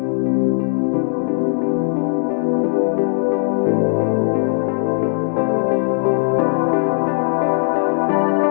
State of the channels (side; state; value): right; silent; digital silence